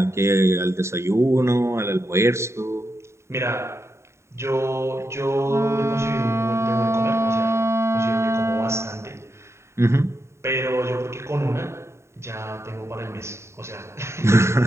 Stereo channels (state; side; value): late; left; 0.13 ms